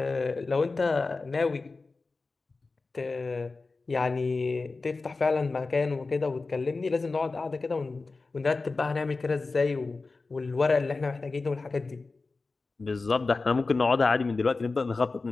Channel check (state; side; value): quieter; right; 3.8 dB